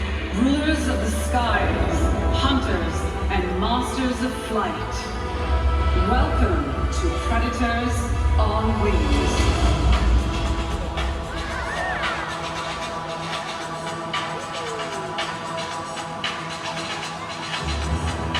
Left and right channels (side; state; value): both; identical; correlation 1.00